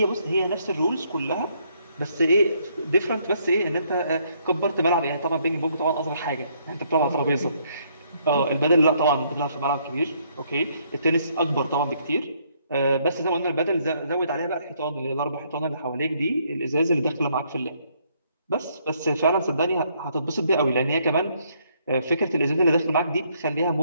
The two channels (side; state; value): both; inverted; correlation -0.69